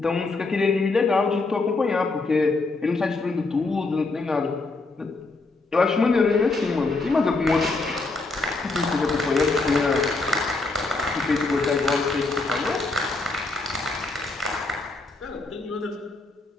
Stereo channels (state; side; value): quieter; right; 3.5 dB